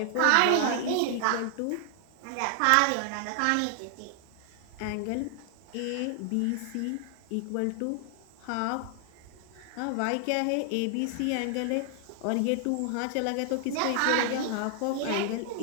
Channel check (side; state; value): both; different; correlation 0.00